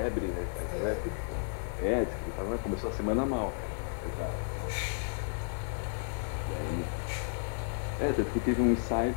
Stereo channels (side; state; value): right; silent; 56 dB below the other